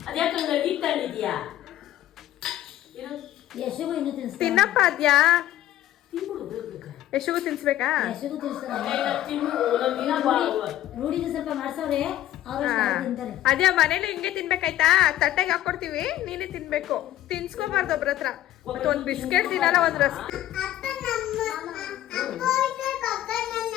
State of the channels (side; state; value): right; quieter; 13.5 dB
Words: ಅದ್ಯಾಕೆ ಹಂಗಾಗಿ ತಂದಿದ್ಯಾ? ಯಶಗೂ ಇನ್ನೂ ತಿನ್ಸ್ತಾರೆ. ತಿನ್ನಪ್ಪ ಅದ್ಯಾ ತಿನ್ಬಿಡು ಬೇಗ. ಯಶಗೂ ತಿನ್ಸ್ಬೇಕಾ? ಯಶಗೂ ತಿನ್ಸ್ತಾರೆ. ರೂಢಿಗೆ ಸ್ವಲ್ಪ ಮಾಡ್ಸವ್ರೆ, ಅವ್ರು ತಿಂತಾರೆ. ಅದ್ಯಾ ಮನೇಲಿ ಹಿಂಗೆ ತಿನ್ಬೇಕಾಯ್ತಾ? ತಟ್ಟೆಗೆ ಹಾಕೊಡ್ತೀವಿ, ನೀನೇ ತಿನ್ಬೇಕು. ತಿನ್ಸ್ಕೋಬಾರ್ದು ಒಬ್ರ ಹತ್ರ. ಮತ್ತೆ ಒಂದ್ ಬಿಸ್ಕೆಟ್ ತಿನ್ನಲ್ಲ, ಒಂದ್ ರಸ್.